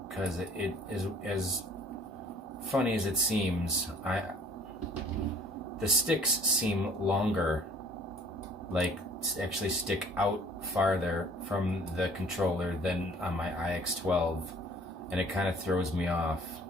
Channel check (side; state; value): both; normal; correlation 0.53